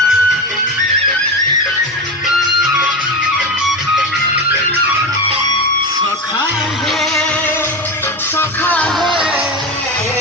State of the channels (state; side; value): normal; both; correlation 0.20